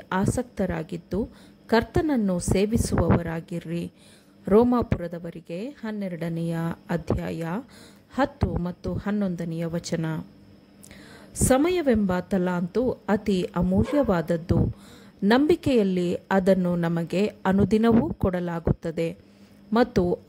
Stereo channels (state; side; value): identical; both; correlation 1.00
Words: ಆಸಕ್ತರಾಗಿದ್ದು ಕರ್ತನನ್ನು ಸೇವಿಸುವವರಾಗಿರ್ರಿ. ರೋಮಾಪುರದವರಿಗೆ 12ನೇ ಅಧ್ಯಾಯ 10 ಮತ್ತು 11ನೇ ವಚನ. ಸಮಯವೆಂಬ ತಲಾಂತು ಅತಿ ಅಮೂಲ್ಯವಾದದ್ದು. ನಂಬಿಕೆಯಲ್ಲಿ ಅದನ್ನು ನಮಗೆ ಅನುದಿನವೂ ಕೊಡಲಾಗುತ್ತದೆ ಮತ್ತು